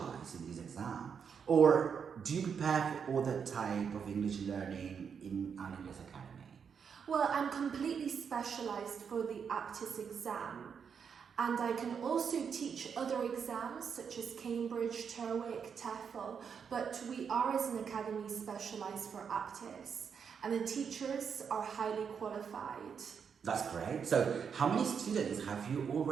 in this exam? Or do you prepare for other type of English learning in Aula Inglés Academy? Well, I'm completely specialized for the Aptis exam, and I can also teach other exams such as Cambridge, TOEIC, TOEFL, but we are as an academy specialized for Aptis, and the teachers are highly qualified. That's great. So how many students have you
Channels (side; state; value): left; quieter; 6.8 dB